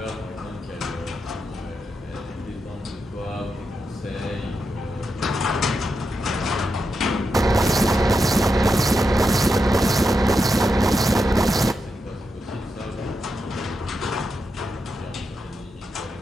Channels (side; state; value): both; normal; correlation 0.86